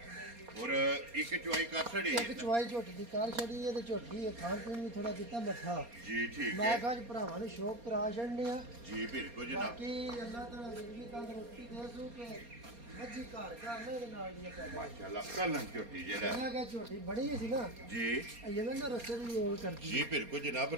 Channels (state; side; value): late; left; 4.3 ms